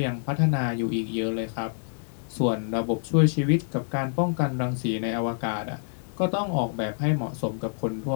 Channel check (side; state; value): right; silent; digital silence